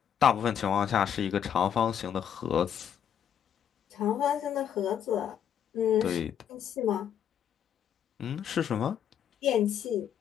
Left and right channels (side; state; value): right; quieter; 9.0 dB